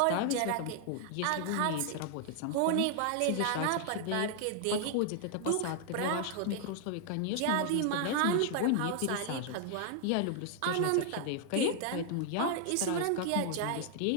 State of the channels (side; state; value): both; different; correlation 0.00